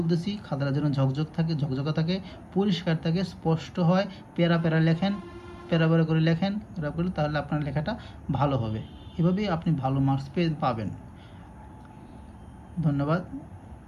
খাতাটা যেন ঝকঝকা থাকে, পরিষ্কার থাকে, স্পষ্ট হয়। প্যারা লেখেন, প্যারা করে লেখেন, তাহলে আপনার লেখাটা ভালো হবে। এভাবেই আপনি ভালো মার্কস পাবেন। ধন্যবাদ,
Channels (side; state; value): both; identical; correlation 1.00